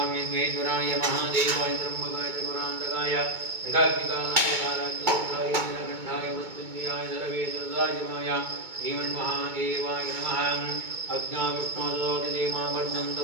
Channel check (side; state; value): left; late; 2.2 ms